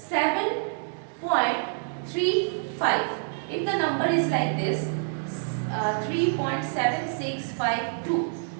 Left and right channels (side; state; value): left; silent; digital silence